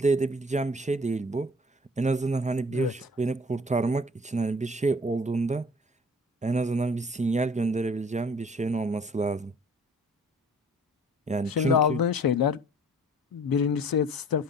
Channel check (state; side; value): normal; both; correlation 0.51